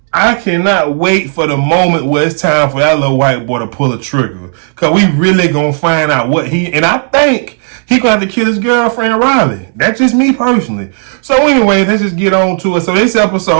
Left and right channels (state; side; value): silent; left; 55 dB below the other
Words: I cannot wait for the moment where it's time for that little white boy to pull a trigger. Because we really going to find out what and I think he going to have to kill his girlfriend, Riley. That's just me personally. So anyway, let's just get on to it. So this